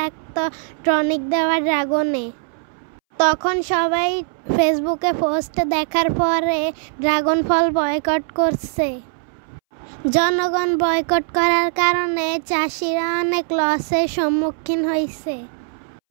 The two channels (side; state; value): left; silent; 65 dB below the other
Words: টনিক দেওয়া ড্রাগনে। তখন সবাই ফেসবুকে পোস্ট দেখার পরে ড্রাগন ফল বয়কট করছে। জনগণ বয়কট করার কারণে চাষিরা অনেক লসের সম্মুখীন হয়েছে।